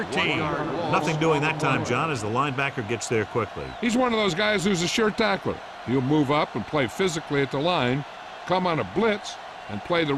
Nothing doing that time, John, as the linebacker gets there quickly. He's one of those guys who's a sure tackler. He'll move up and play physically at the line, come on a blitz, and play the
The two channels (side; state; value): both; identical; correlation 1.00